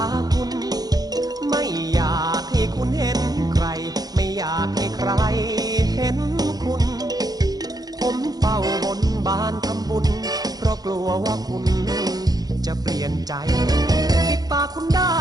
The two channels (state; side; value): late; left; 0.19 ms